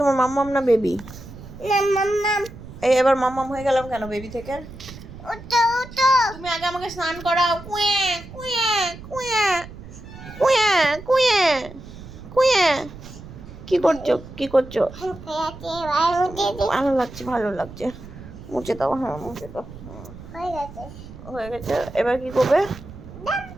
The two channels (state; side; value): noise; right; rumble, 15 dB below the sound